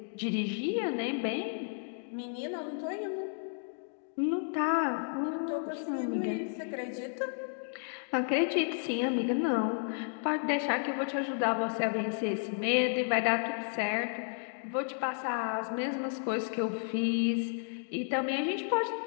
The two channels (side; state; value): right; silent; digital silence